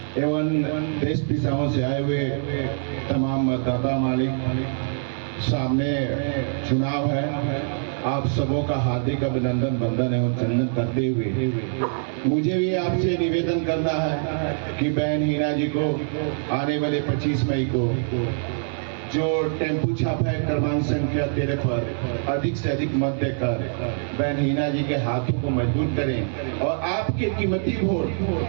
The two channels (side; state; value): left; silent; digital silence